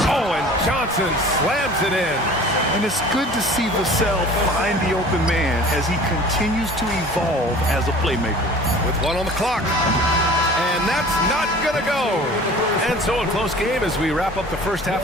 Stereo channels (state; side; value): normal; both; correlation 0.44